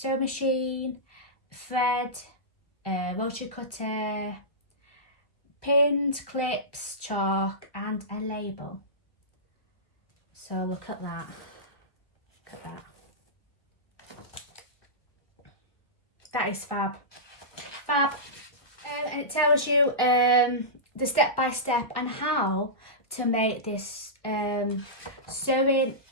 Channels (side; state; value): right; late; 1.5 ms